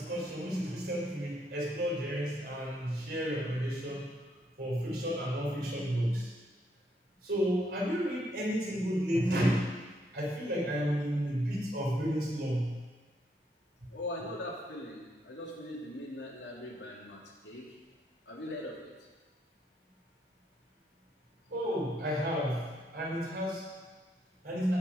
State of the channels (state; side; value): normal; both; correlation 0.75